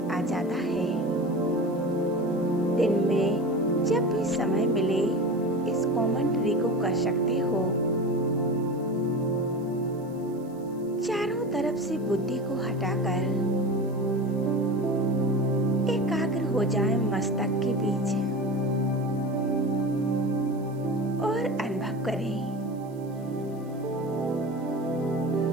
जाता है। दिन में जब भी समय मिले इस कमेंट्री को कर सकते हो। चारों तरफ से बुद्धि को हटाकर एकाग्र हो जाए मस्तक के बीच और अनुभव करें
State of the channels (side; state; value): right; noise; hiss, 29 dB below the sound